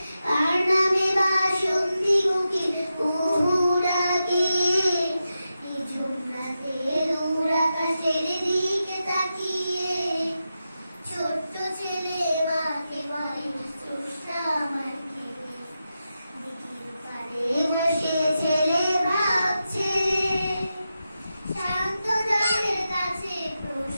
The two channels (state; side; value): inverted; both; correlation -0.90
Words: কার নামে বাসন্তী কোকিল কুহু ডাকে। নিঝুম রাতে দূর আকাশের দিকে তাকিয়ে ছোট্ট ছেলে মাকে বলে, স্রষ্টা আমার কে। দিঘির পাড়ে বসে ছেলে ভাবছে, শান্ত জলের কাছে